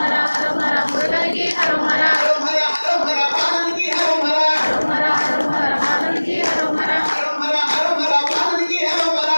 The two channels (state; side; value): inverted; both; correlation -1.00